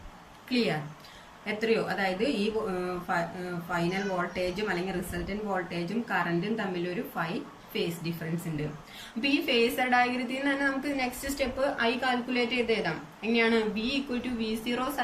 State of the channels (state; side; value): identical; both; correlation 1.00